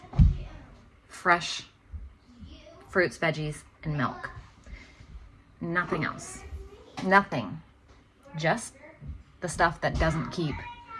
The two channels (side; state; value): both; identical; correlation 1.00